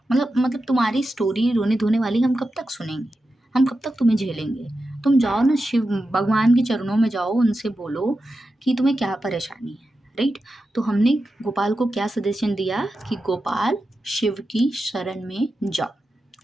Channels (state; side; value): normal; both; correlation 0.90